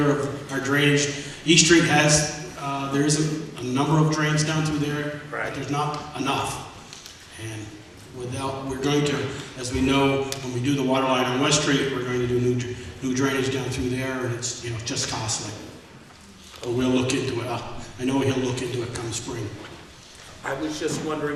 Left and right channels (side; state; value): both; identical; correlation 1.00